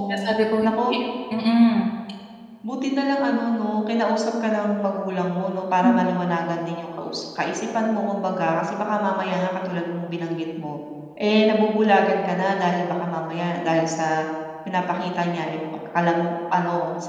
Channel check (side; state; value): both; identical; correlation 1.00